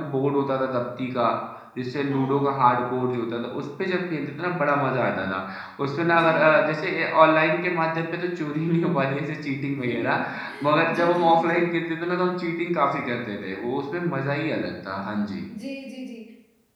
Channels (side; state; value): both; identical; correlation 1.00